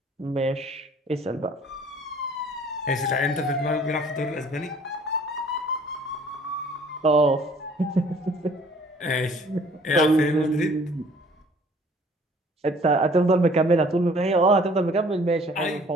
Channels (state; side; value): normal; both; correlation 0.55